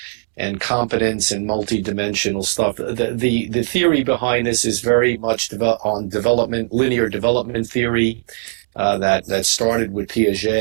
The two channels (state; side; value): silent; left; digital silence